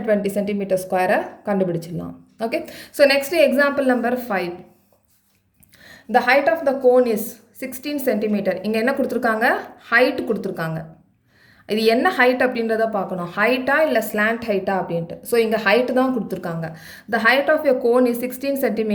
cm ஸ்கொயரை கண்டுபிடிச்சிடலாம். Okay, so next example number 5. The height of the cone is 16 cm. இங்கே என்ன கொடுத்துருக்காங்க? ஹைட் கொடுத்துருக்காங்க. இது என்ன ஹைட் அப்படின்றத பார்க்கணும், ஹைட்டா இல்லை ஸ்லாண்ட் ஹைட்டா அப்படின்ட்டு. ஸோ இங்கே ஹைட்டு தான் கொடுத்துருக்காங்க. The height of a cone is 16 cm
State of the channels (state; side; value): identical; both; correlation 1.00